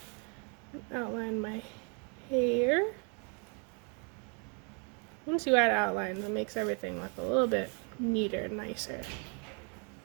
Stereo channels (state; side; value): quieter; left; 36.6 dB